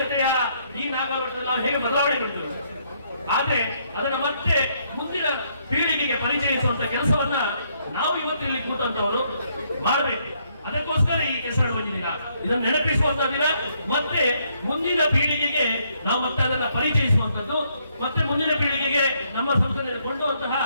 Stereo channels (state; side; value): inverted; both; correlation -0.72